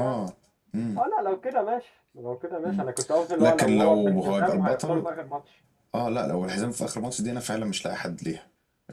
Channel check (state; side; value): identical; both; correlation 1.00